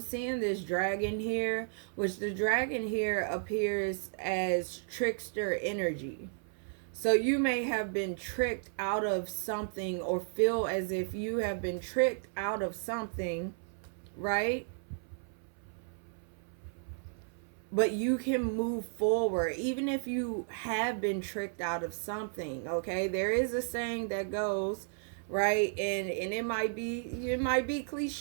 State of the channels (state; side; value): silent; left; 55 dB below the other